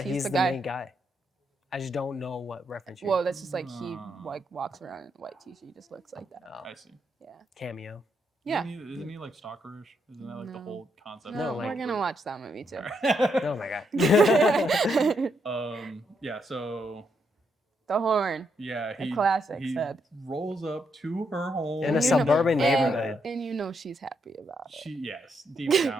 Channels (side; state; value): both; normal; correlation 0.78